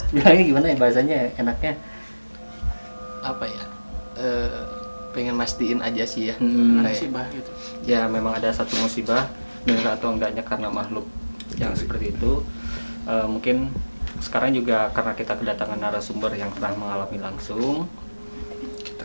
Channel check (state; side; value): inverted; both; correlation -1.00